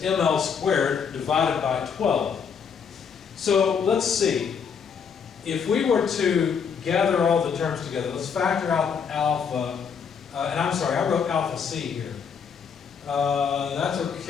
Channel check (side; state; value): right; quieter; 6.6 dB